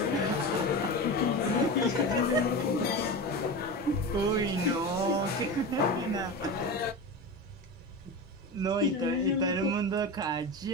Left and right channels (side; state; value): both; normal; correlation 0.25